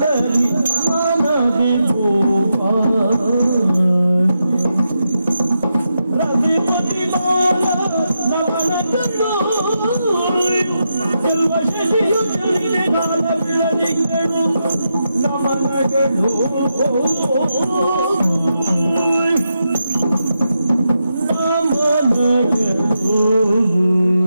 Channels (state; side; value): inverted; both; correlation -0.86